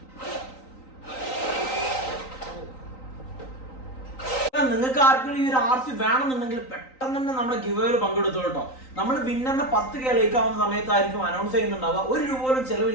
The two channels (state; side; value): late; right; 3.9 ms